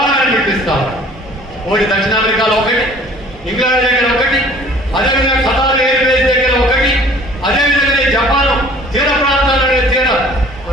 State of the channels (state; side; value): normal; both; correlation 0.51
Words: మిలిటరీ స్థావరాలు ఒకటి దక్షిణ అమెరికాలో ఒకటి, ఇంగ్లాండ్ దగ్గర ఒకటి, అదేవిధంగా ఖతార్ ఎయిర్ బేస్ దగ్గర ఒకటి, అదేవిధంగా జపాన్ తీర ప్రాంతాల్లో